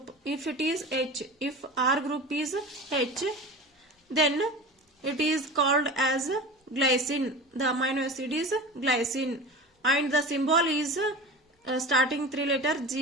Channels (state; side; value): normal; both; correlation 0.32